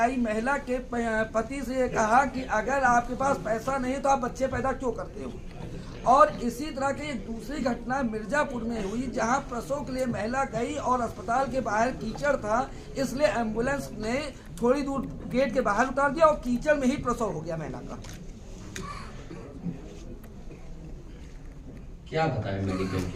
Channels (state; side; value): identical; both; correlation 1.00